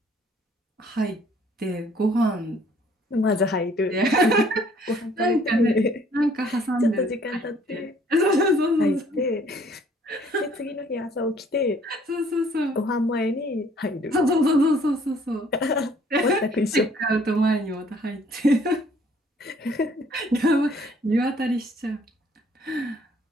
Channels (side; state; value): both; normal; correlation 0.60